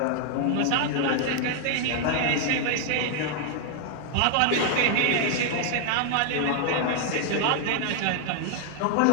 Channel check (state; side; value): different; both; correlation 0.00